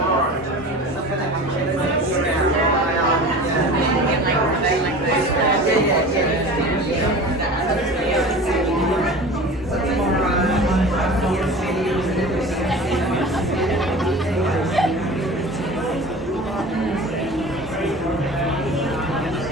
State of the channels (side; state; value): both; normal; correlation 0.37